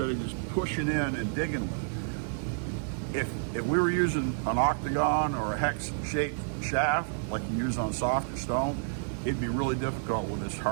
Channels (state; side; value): silent; left; digital silence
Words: of just pushing in and digging with it. If we were using an octagon or a hex shaped shaft like you use on softer stone, it'd be really difficult with this